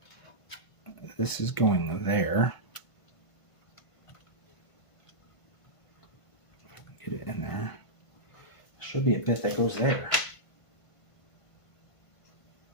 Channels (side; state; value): right; late; 1.5 ms